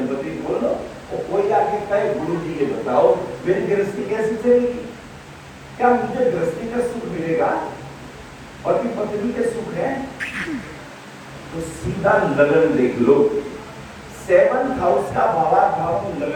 बोलो तो कोई आके कहे गुरु जी ये बताओ मेरी गृहस्थी कैसे चलेगी? क्या मुझे गृहस्थी का सुख मिलेगा? पति पत्नी के सुख है? तो सीधा लगन देख लो। 7th हाउस का भावार्थ भाव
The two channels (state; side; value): identical; both; correlation 1.00